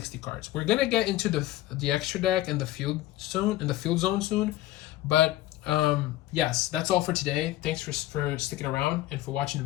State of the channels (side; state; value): right; quieter; 15.6 dB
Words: cards. We're gonna get into the extra deck and the field zone soon, but yes, that's all for today. Thanks for sticking around and for watching the